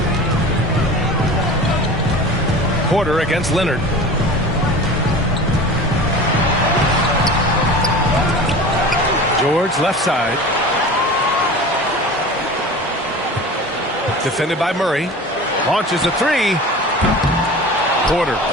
Porter against Leonard. George left side. Defended by Murray. Launches a three. Porter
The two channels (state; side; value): normal; both; correlation 0.36